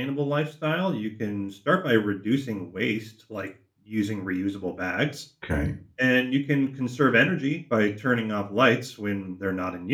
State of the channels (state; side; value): identical; both; correlation 1.00